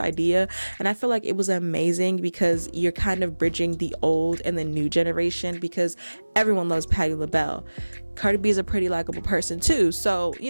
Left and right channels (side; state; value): both; inverted; correlation -1.00